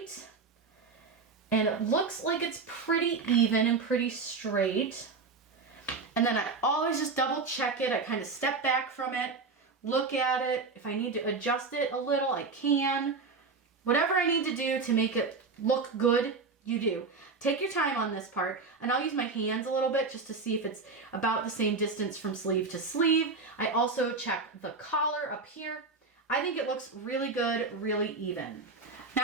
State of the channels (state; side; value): quieter; left; 4.3 dB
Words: and it looks like it's pretty even and pretty straight. And then I always just double check it. I kind of step back from it, look at it. If I need to adjust it a little, I can. Whatever I need to do to make it look good, you do. Take your time on this part, and I'll use my hands a little bit just to see if it's about the same distance from sleeve to sleeve. I also check the collar up here. I think it looks really good, really even.